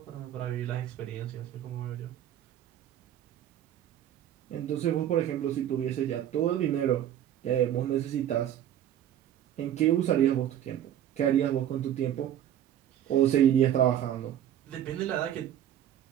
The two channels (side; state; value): left; quieter; 11.0 dB